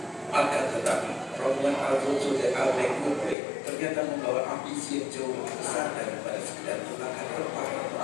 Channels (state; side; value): drops out; right; at 3.4 s